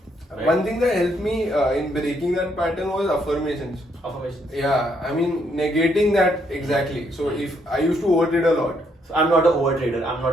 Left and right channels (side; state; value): both; normal; correlation 0.73